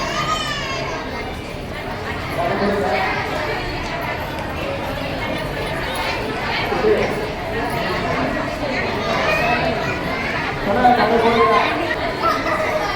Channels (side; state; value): both; identical; correlation 1.00